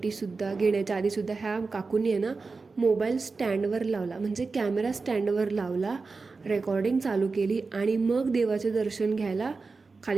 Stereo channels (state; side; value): quieter; left; 4.2 dB